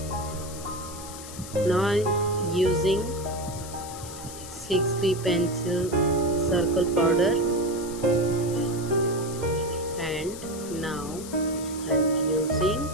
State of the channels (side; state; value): left; noise; hiss, 13 dB below the sound